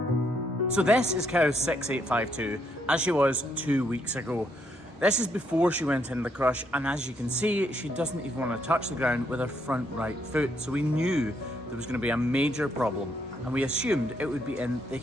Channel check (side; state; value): both; normal; correlation 0.74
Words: So this is cow 6852 as she was 2 weeks ago. This is before she went in the crush, and as you can see, she doesn't even want to touch the ground with her front right foot. So we knew there was going to be a major problem, and we assumed it would be in the